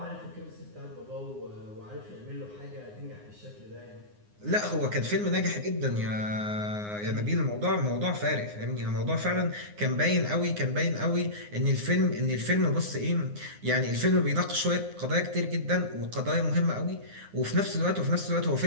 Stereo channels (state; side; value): late; left; 9.6 ms